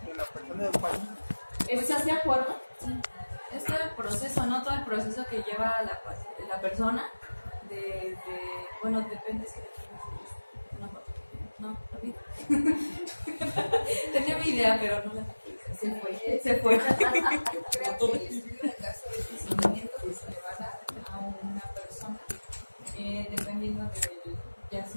una persona de un paciente. ¿Estás de acuerdo? Sí. Este proceso, ¿no? Todo el proceso que lleva la persona, bueno, depende si una foto. No, olvida. Tenía mi idea, pero no la se fue. Yo creo que el estudio de caso es el seguimiento que se le va a dar a una persona, dependiendo del, ya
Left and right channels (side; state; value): both; inverted; correlation -1.00